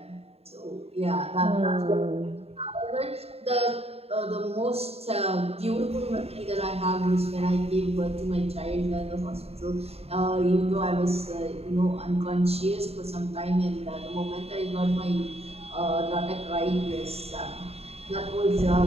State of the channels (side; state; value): left; late; 0.29 ms